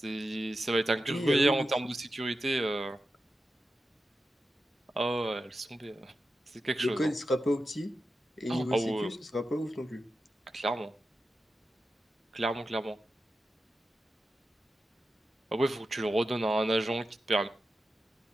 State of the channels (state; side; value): normal; both; correlation 0.91